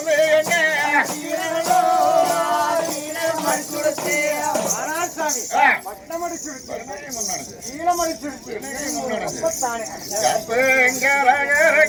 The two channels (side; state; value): both; identical; correlation 1.00